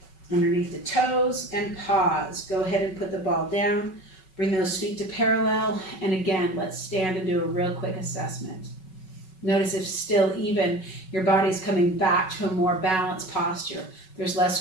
Underneath the toes and pause. Go ahead and put the ball down. Bring those feet to parallel. And again, let's stand and do a real quick assessment. Notice if still even your body's coming back to a more balanced posture. There's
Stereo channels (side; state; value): right; late; 5.3 ms